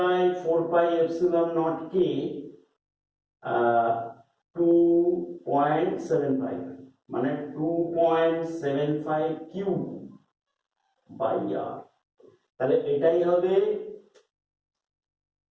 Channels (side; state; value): both; identical; correlation 1.00